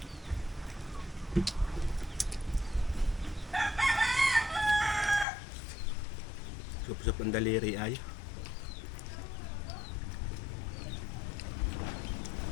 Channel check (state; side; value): drops out; right; at 5.2 s